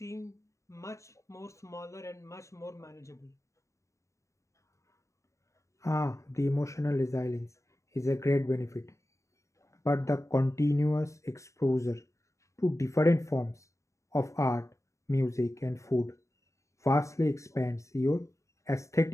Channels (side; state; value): right; late; 0.15 ms